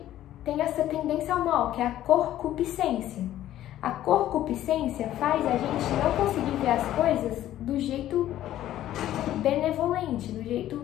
tem essa tendência ao mal, que é a concupiscência. A concupiscência faz a gente não conseguir ver as coisas do jeito benevolente, do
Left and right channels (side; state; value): right; quieter; 13.0 dB